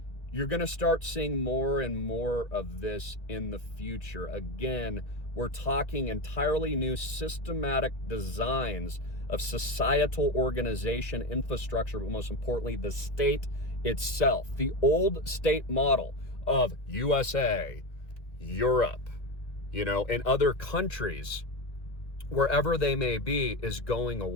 You're going to start seeing more and more of this in the future. Again, we're talking entirely new systematic designs of societal organization, infrastructure, but most importantly, the state itself. The old state model of USA, Europe, you know, and other countries, wherever they may be, is going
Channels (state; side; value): late; right; 1.9 ms